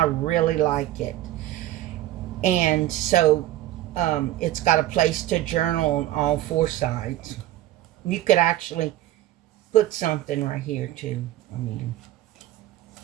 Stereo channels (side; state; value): left; quieter; 14.5 dB